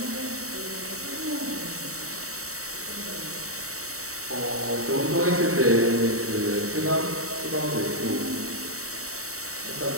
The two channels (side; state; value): left; late; 0.64 ms